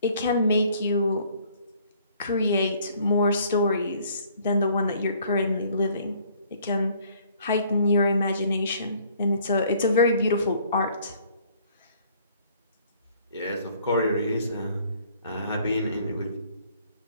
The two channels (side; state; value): both; inverted; correlation -0.59